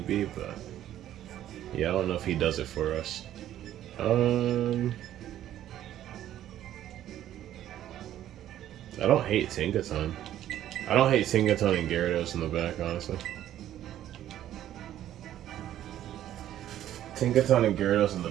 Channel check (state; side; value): quieter; left; 12.1 dB